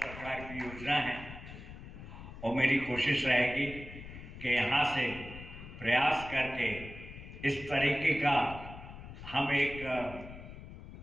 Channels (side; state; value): left; noise; rumble, 13 dB below the sound